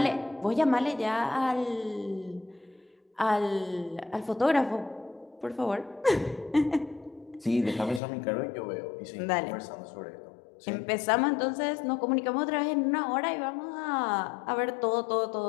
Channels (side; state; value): right; drops out; at 8.0 s